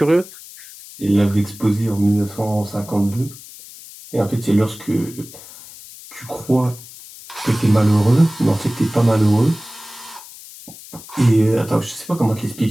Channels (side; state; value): left; noise; hiss, 17 dB below the sound